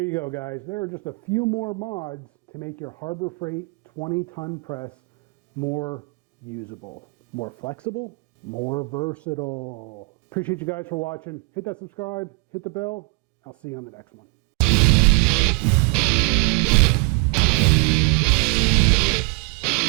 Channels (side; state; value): left; quieter; 31.8 dB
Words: you go, guys. There are just a few more mods to make your Harbor Freight 20-ton press more usable, more flexible, more versatile. Appreciate you guys for watching. Hit that subscribe, hit the bell. I'll see you on the next one.